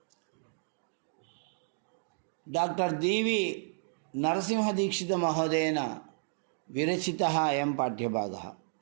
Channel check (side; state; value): left; silent; digital silence